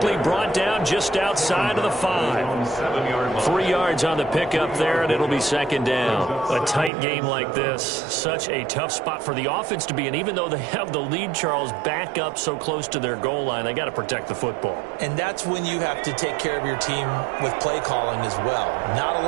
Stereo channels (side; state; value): left; drops out; at 6.9 s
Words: brought down just outside of the 5. 3 yards on the pickup there, and it'll be 2nd down. A tight game like this, such a tough spot for the offense to be in. Even though they have the lead, Charles, back up so close to their goal line, they got to protect the football. And that's when you have to take care of your team with play calling as well. Not a